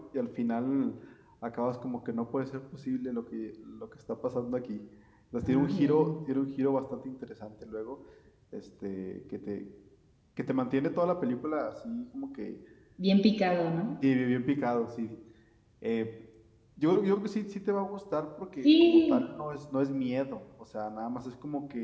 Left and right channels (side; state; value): both; identical; correlation 1.00